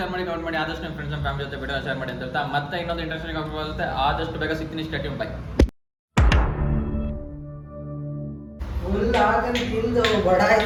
ಮಾಡಿ ಕಮೆಂಟ್ ಮಾಡಿ ಆದಷ್ಟು ನಿಮ್ಮ ಫ್ರೆಂಡ್ಸ್ ಅಂಡ್ ಫ್ಯಾಮಿಲಿ ಜೊತೆ ವಿಡಿಯೋ ಶೇರ್ ಮಾಡಿ ಅಂತ ಹೇಳ್ತಾ ಮತ್ತೆ ಇನ್ನೊಂದು ಇಂಟ್ರೆಸ್ಟಿಂಗ್ ಆಗುತ್ತೆ ಆದಷ್ಟು ಬೇಗ ಸಿಗ್ತೀನಿ ಸ್ಟೇಟ್ಯೂನ್ ಬೈ ಫುಲ್ ಹಾಕಿ ತಿಂದು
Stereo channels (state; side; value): identical; both; correlation 1.00